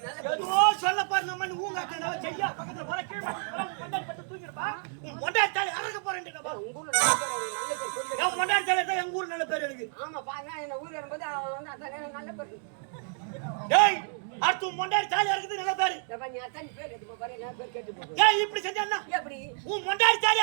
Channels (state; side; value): silent; left; 58 dB below the other